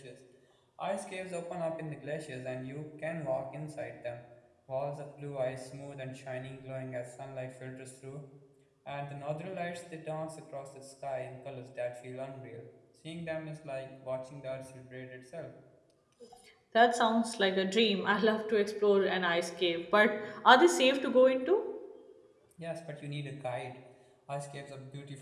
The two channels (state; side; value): identical; both; correlation 1.00